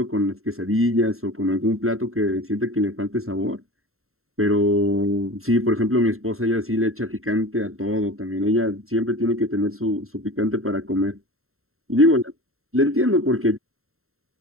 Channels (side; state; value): left; late; 0.62 ms